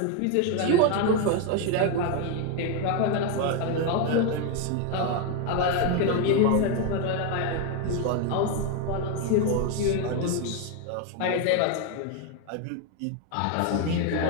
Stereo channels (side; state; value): both; different; correlation 0.01